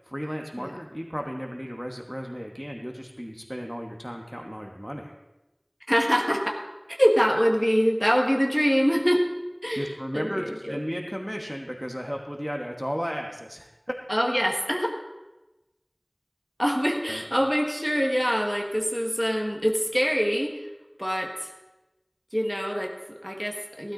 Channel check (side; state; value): both; identical; correlation 1.00